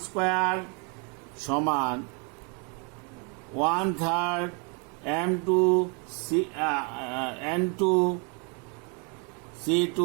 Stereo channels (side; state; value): left; quieter; 35.3 dB